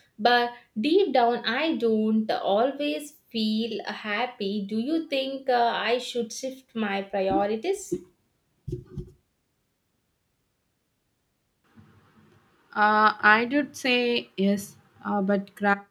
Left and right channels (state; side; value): identical; both; correlation 1.00